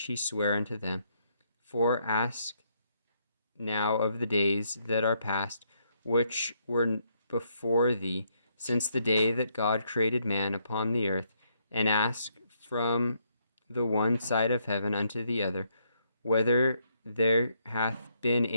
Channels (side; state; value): both; inverted; correlation -0.74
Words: he sware unto them. For ask now of the days that are past, which were before thee, since the day that God created man upon the earth, and ask from the one side of heaven unto the other, whether there hath been